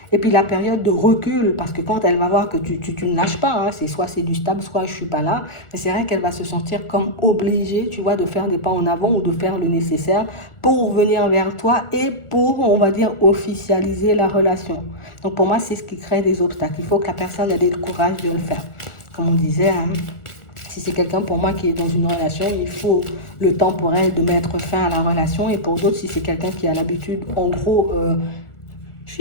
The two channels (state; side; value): late; right; 1.4 ms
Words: Et puis la période de recul, parce que quand elle va voir que tu ne lâches pas, hein, c'est soit c'est du stable, soit je suis pas là, mais c'est vrai qu'elle va se sentir comme obligée, tu vois, de faire des pas en avant ou de faire le nécessaire pour venir vers toi et pour, on va dire, officialiser la relation. Donc pour moi, c'est ce qui crée des obstacles. Il faut que la personne ait le courage de le faire. Comme on disait, hein, si c'est quelqu'un pour moi qui est dans une relation, il faut le temps pour elle de mettre fin à la relation. Et pour d'autres, si c'est quelqu'un qui a l'habitude, en gros, je